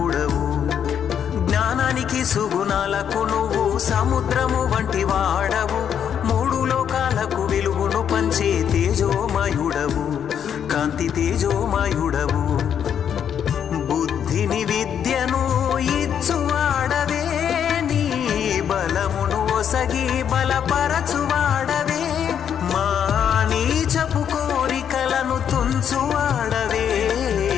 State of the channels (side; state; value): right; quieter; 8.6 dB